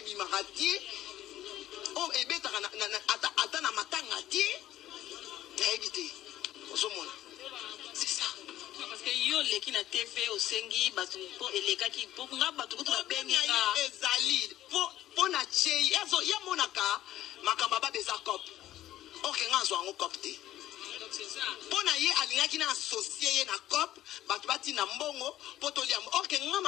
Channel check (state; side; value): quieter; right; 13.6 dB